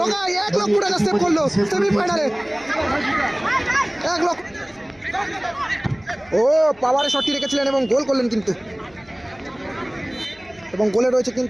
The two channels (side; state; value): left; noise; hum, 29 dB below the sound